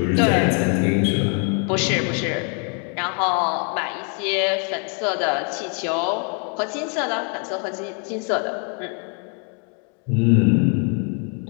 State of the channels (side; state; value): right; quieter; 39.6 dB